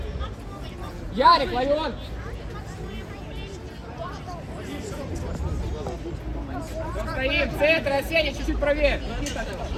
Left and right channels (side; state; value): both; identical; correlation 1.00